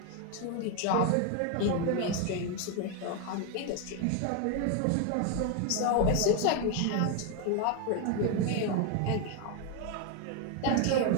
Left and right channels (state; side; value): different; both; correlation 0.01